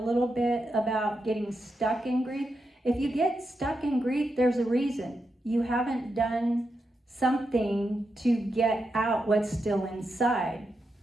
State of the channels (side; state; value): both; normal; correlation 0.86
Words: bit about getting stuck in grief. If you get stuck in grief, there's a reason. You haven't done something to get out what's still inside.